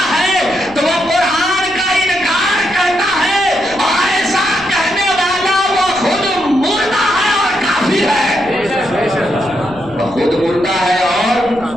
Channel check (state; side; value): noise; left; rumble, 20 dB below the sound